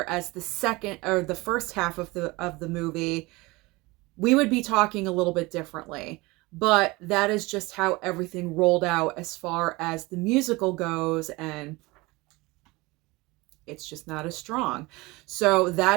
as the first half of the movie, we would be talking a little bit differently. But that is just how everything rolled out as far as the musical goes, and it's just not as strong. So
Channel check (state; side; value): quieter; left; 22.9 dB